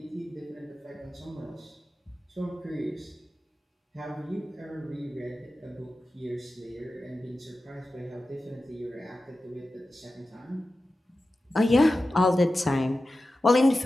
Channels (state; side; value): normal; both; correlation 0.94